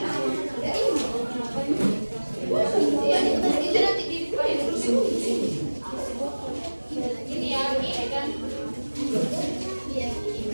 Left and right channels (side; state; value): both; inverted; correlation -1.00